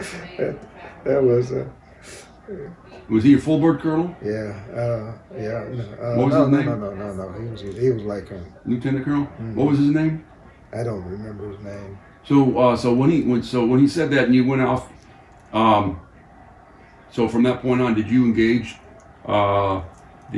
That was Was he a full board colonel? yeah, yeah. What was no, his no, name? no. He was like Lieutenant colonel. Mhm. What was his name? I don't remember his name. So when he said that and you went off, so from that point on, did you engage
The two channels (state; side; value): identical; both; correlation 1.00